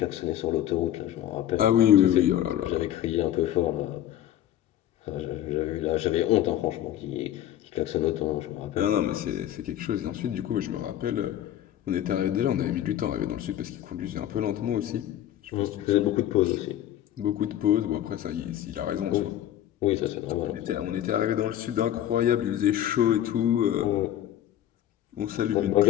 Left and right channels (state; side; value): quieter; right; 11.9 dB